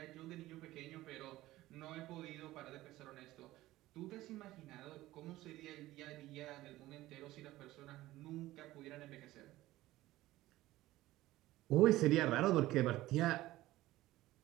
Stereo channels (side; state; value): left; quieter; 16.6 dB